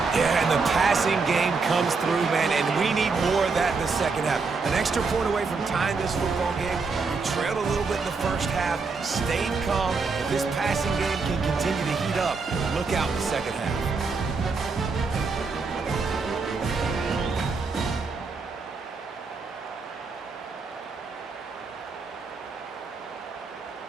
Yeah, and the passing game comes through, man, and we need more of that in the second half. An extra point away from tying this football game. We trailed a little bit in the first half, stayed calm. If this passing game can continue to heat up, look out in the second half.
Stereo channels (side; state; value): left; quieter; 4.5 dB